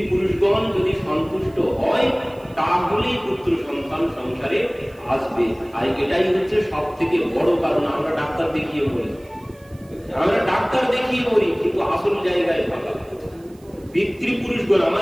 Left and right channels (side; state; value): right; noise; hiss, 30 dB below the sound